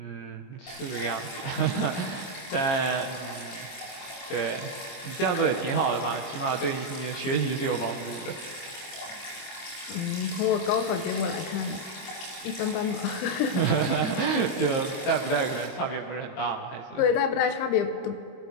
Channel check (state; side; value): late; right; 25 ms